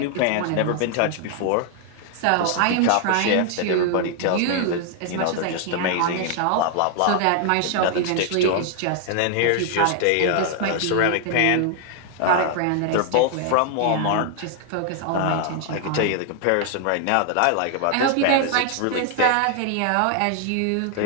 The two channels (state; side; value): different; both; correlation 0.00